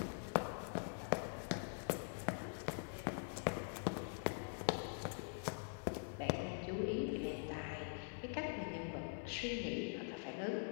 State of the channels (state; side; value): silent; right; digital silence